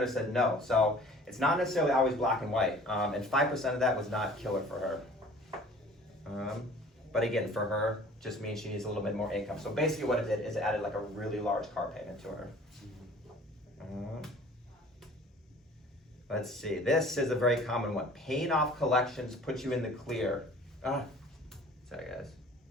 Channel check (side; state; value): both; normal; correlation 0.48